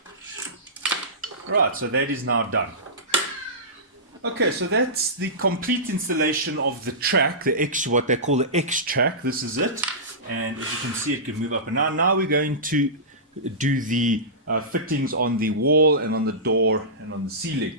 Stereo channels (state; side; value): normal; both; correlation -0.19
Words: Right, so that is now done. Okay, so that's the complete installation of the track, what they call the XTrac. This is it, and as you can see, it can move up and down. Now we're going to do the fittings on the wall and on the door and on the ceiling.